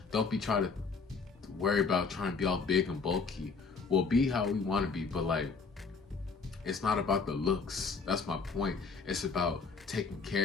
don't be trying to worry about trying to be all big and bulky. We'll be how we want to be, but like, it's not about the looks. That's my point. It's about taking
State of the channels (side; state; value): right; quieter; 4.7 dB